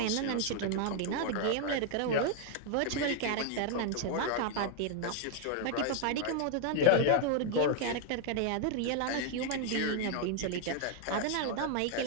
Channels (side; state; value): both; different; correlation 0.00